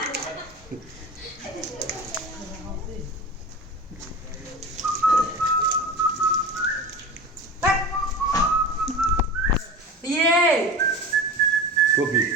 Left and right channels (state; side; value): normal; both; correlation 0.31